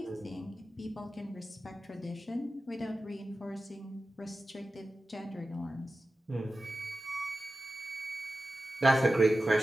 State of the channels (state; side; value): normal; both; correlation 0.94